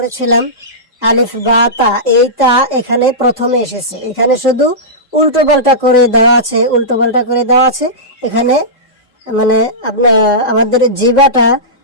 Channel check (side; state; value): both; normal; correlation -0.17